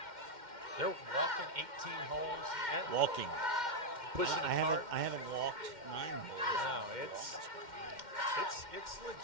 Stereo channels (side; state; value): left; late; 2.1 ms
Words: they're walking 18 holes. Walking. Pushing I hard. I haven't walked 9 holes. No, it's